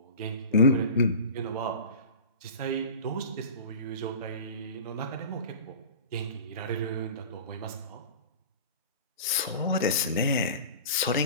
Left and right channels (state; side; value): inverted; both; correlation -0.36